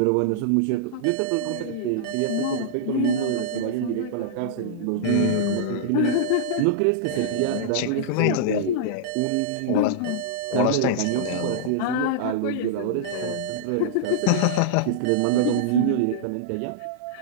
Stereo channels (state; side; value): different; both; correlation -0.02